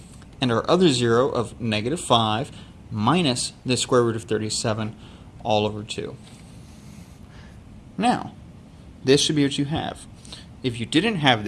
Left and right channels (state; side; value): identical; both; correlation 1.00